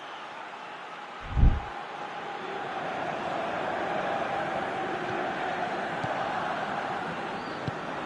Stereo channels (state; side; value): identical; both; correlation 1.00